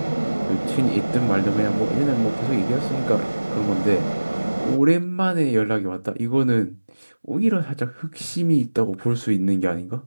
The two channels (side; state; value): both; inverted; correlation -1.00